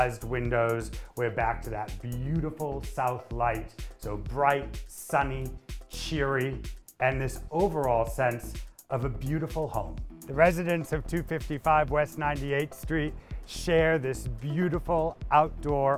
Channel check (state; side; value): identical; both; correlation 1.00